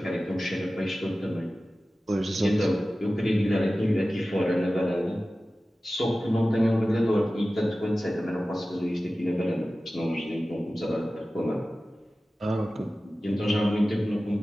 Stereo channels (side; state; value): both; normal; correlation 0.96